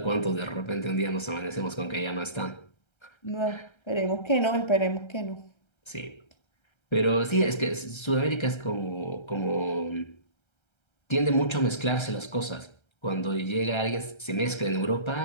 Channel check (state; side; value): late; right; 1.3 ms